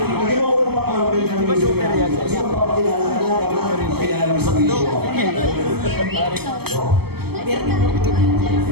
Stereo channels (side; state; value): left; late; 0.96 ms